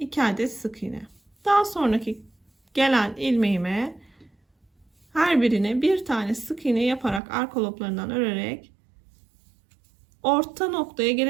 adet sık iğne. Daha sonraki gelen ilmeğime her birine bir tane sık iğne yaparak arka loblarından örerek orta noktaya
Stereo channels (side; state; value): left; drops out; at 7.2 s